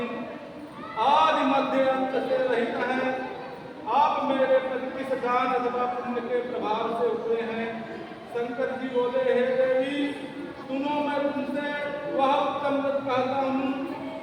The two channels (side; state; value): both; identical; correlation 1.00